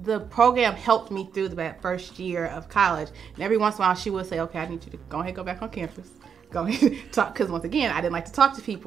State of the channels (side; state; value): left; quieter; 7.1 dB